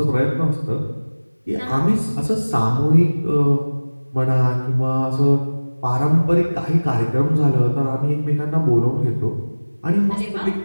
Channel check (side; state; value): both; inverted; correlation -1.00